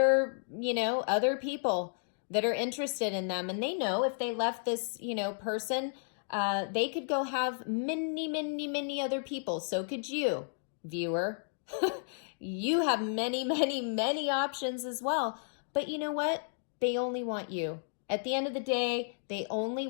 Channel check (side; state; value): right; silent; digital silence